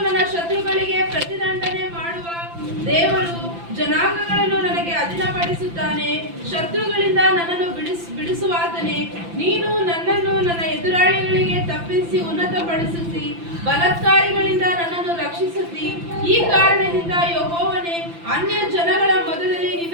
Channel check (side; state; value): left; late; 5.9 ms